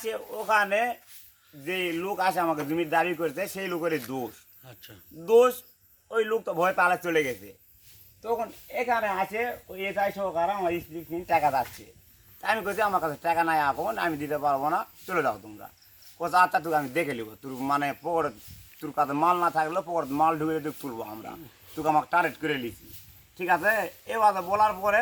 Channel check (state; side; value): identical; both; correlation 1.00